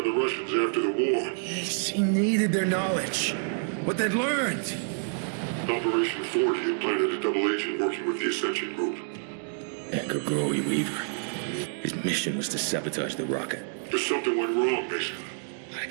Russians after the war. Yes, he needed their knowledge. What they'd learned. Operation Ford had planted a double agent working with the Ascension Group. Edgar Growy Weaver. His mission was to sabotage the rocket. But something went wrong, Mason. I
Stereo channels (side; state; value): left; silent; 59 dB below the other